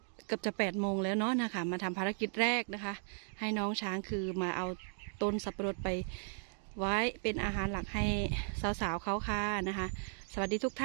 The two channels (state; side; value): silent; left; 54 dB below the other